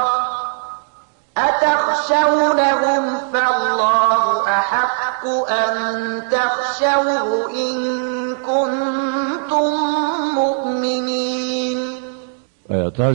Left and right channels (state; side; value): silent; left; digital silence